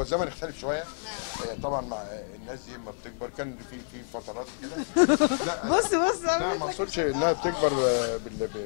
الزمن اختلف شويه طبعا مع الناس دي لما بتكبر، كان في فترات كده. بص لا ما اقصدش انها بتكبر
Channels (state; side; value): silent; right; digital silence